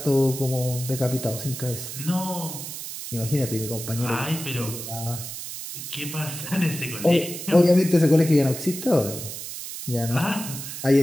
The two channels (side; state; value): right; noise; hiss, 8 dB below the sound